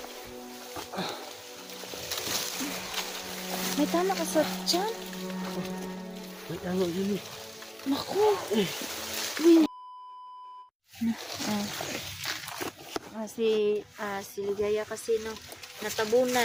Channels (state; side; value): identical; both; correlation 1.00